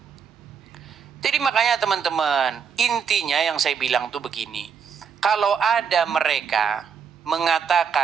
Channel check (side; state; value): left; quieter; 6.8 dB